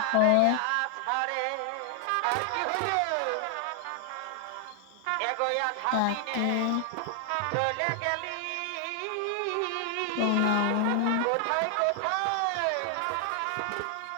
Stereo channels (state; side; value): different; both; correlation 0.00